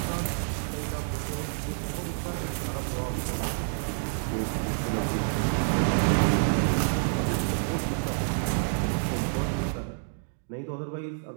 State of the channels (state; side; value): silent; left; digital silence